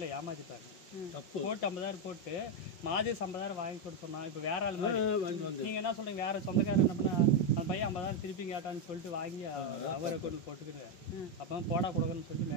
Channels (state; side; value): late; right; 5.4 ms